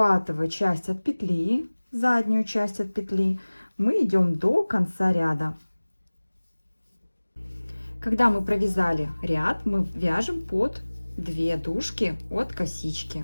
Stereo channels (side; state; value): both; inverted; correlation -1.00